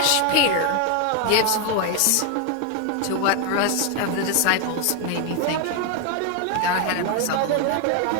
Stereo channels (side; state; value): both; different; correlation 0.00